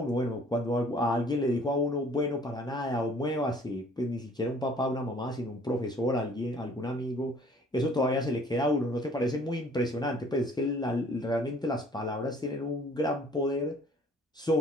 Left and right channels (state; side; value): normal; both; correlation 0.55